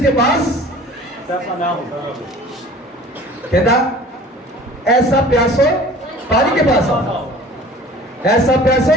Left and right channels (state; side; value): normal; both; correlation 0.45